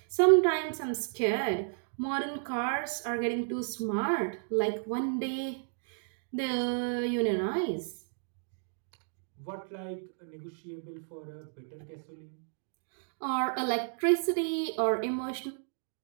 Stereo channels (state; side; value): silent; left; digital silence